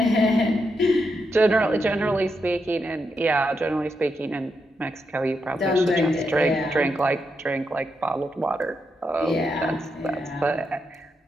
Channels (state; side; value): normal; both; correlation 0.83